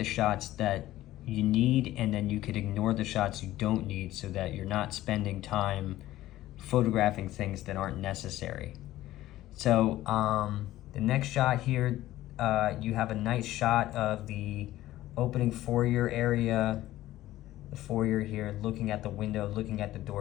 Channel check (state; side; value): quieter; right; 15.2 dB